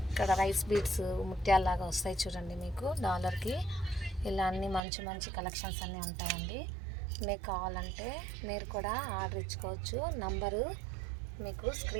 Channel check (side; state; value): left; drops out; at 4.8 s